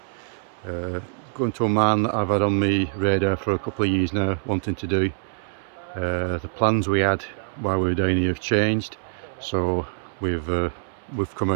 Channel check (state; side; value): silent; left; 62 dB below the other